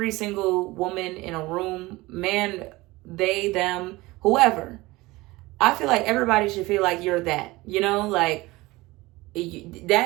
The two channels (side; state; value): left; quieter; 20.7 dB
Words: single woman in a room, man, they, them, whoever, I feel like everybody should feel like you're that, you know, like